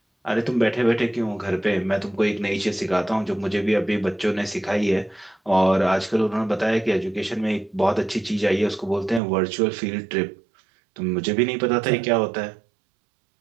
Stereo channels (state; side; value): drops out; left; at 9.2 s